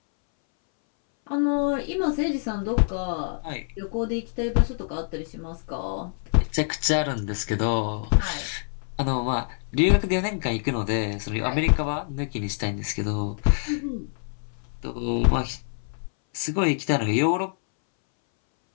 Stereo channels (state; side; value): silent; right; 61 dB below the other